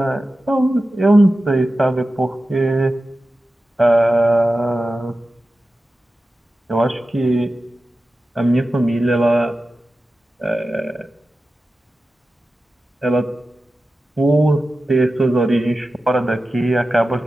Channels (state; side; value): normal; both; correlation 0.93